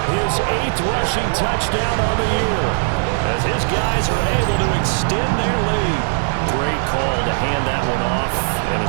his 8th rushing touchdown on the year, as his guys are able to extend their lead. Great call to hand that one off, and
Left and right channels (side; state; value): left; silent; digital silence